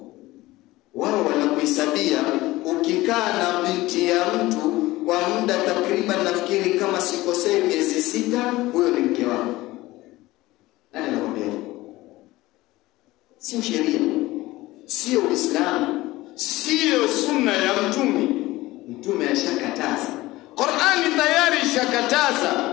Wao wanakuhesabia ukikaa na binti ya mtu kwa muda takriban, nafikiri kama sikosei, miezi 6, huyo ni mke wako. Nani anakuambia? Sio sheria, sio Uislamu, sio sunna ya Mtume. Mtume ashakataza, Qur'ani tayari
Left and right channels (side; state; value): right; quieter; 18.5 dB